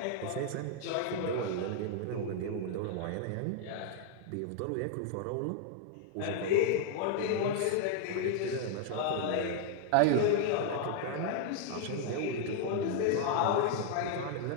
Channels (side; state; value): both; different; correlation 0.00